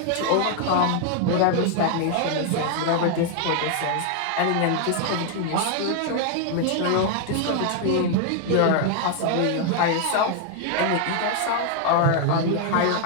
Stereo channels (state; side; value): different; both; correlation 0.00